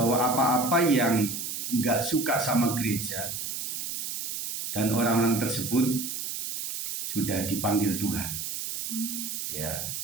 apa-apa yang nggak suka sama gereja dan orang-orang tersebut sudah dipanggil Tuhan. Ya,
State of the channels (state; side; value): noise; right; hiss, 4 dB below the sound